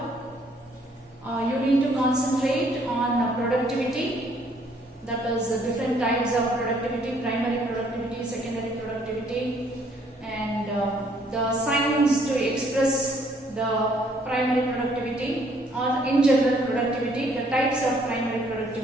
You need to concentrate on productivity, that is different types of productivity, primary productivity, secondary productivity, and the signs to express the primary productivity, or in general productivity, the types of primary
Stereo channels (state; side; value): normal; both; correlation 0.64